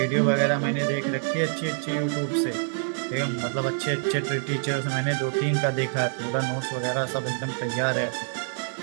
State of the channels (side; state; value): left; silent; 61 dB below the other